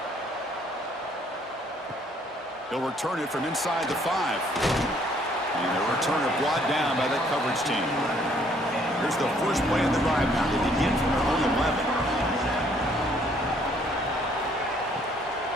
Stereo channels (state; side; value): normal; both; correlation 0.64